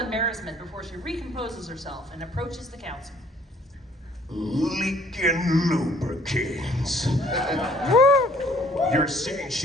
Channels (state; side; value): normal; both; correlation 0.58